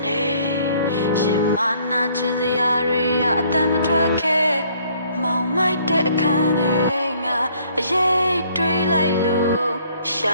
နေရှင်မနာချင်စရာတွေအတမ်းမထွက်ခဲ့မောင်မိုက်တဲ့အခန်းထဲငါအရေးတွေးလိုက်လို့ရှ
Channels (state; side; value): inverted; both; correlation -0.61